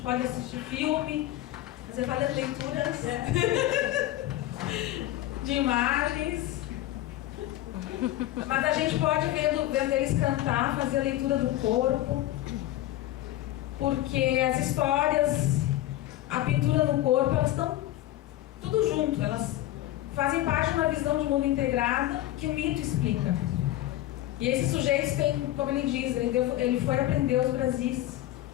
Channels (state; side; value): quieter; right; 14.7 dB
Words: assistir filme, fazer várias leituras de imagens. Mas a gente pode vendo eles cantar, fazer a leitura do corpo, porque as histórias, a pintura no corpo, elas estão tudo junto, elas fazem parte de uma visão de mundo integrada que o mito explica. E esses sujeitos têm, como ele diz, ele foi aprender os Brasis.